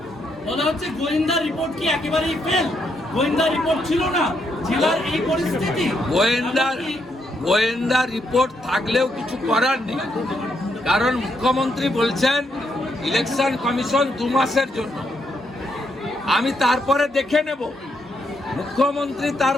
বলা হচ্ছে গোয়েন্দা রিপোর্ট কি একেবারেই ফেল? গোয়েন্দা রিপোর্ট ছিল না, জেলার এই পরিস্থিতি। গোয়েন্দা রিপোর্ট থাকলেও কিছু করার নেই, কারণ মুখ্যমন্ত্রী বলছেন ইলেকশন কমিশন 2 মাসের জন্য। আমি তারপরে দেখে নেব। মুখ্যমন্ত্রী তার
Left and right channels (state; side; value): normal; both; correlation 0.77